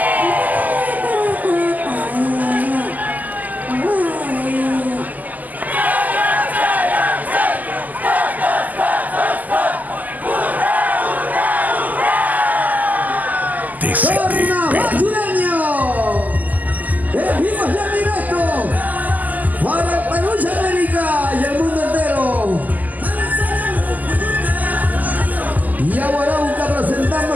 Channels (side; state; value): left; late; 0.081 ms